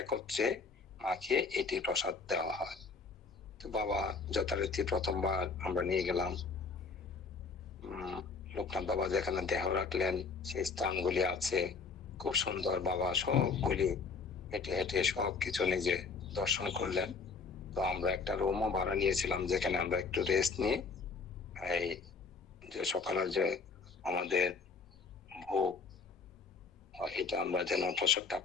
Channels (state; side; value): quieter; right; 4.8 dB